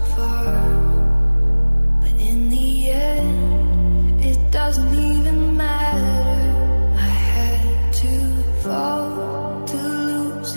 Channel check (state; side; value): inverted; both; correlation -1.00